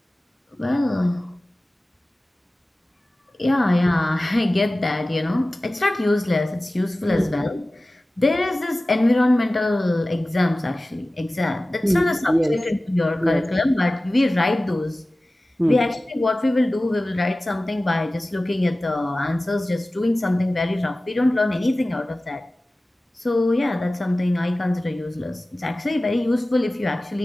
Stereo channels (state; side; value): normal; both; correlation 0.97